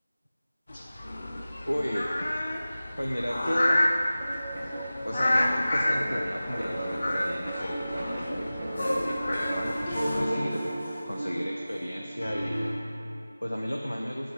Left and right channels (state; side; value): inverted; both; correlation -0.97